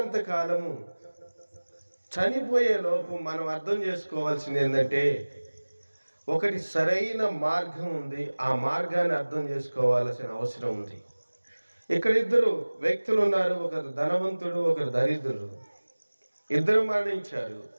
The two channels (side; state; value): both; inverted; correlation -1.00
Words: కాలము చనిపోయే లోపు మనం అర్థం చేసుకోవాల్సింది ఏంటంటే, ఒకటి సరైన మార్గం ఉంది, ఆ మార్గాన్ని అర్థం చేసుకోవాల్సిన అవసరం ఉంది. ఇక్కడ ఇద్దరు వ్యక్తులు ఉన్నారు, ఒకరు ధనవంతుడు, ఒకరు దరిద్రుడు. ఇద్దరు మరణించారు.